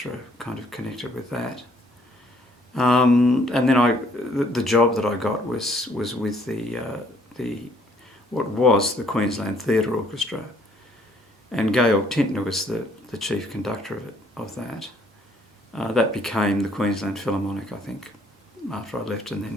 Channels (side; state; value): both; normal; correlation 0.63